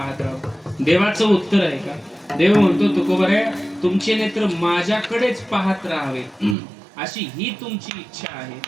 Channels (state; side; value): drops out; left; at 6.6 s